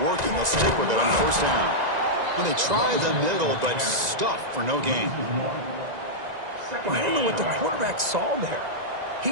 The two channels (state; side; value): late; left; 1.9 ms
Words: They'll stick with it on first down. Well, they try the middle, but stuff for no gain. Well, I don't know what the quarterback saw there. He